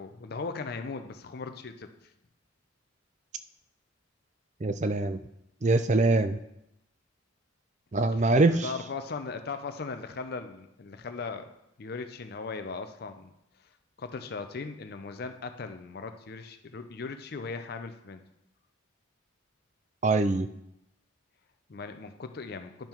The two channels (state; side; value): normal; both; correlation 0.50